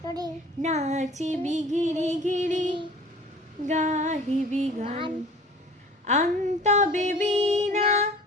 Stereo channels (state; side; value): normal; both; correlation 0.45